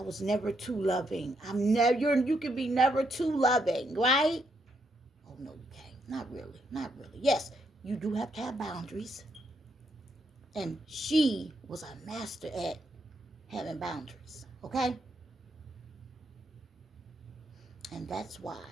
was never too loving. You can be never too loving, right? Oh, no, you can't. Not really. Yes, you do have to have boundaries. And she was a master at having boundaries, okay? And that's why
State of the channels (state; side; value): normal; both; correlation 0.77